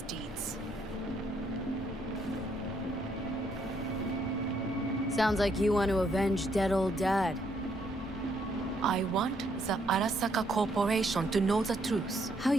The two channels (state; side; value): normal; both; correlation 0.71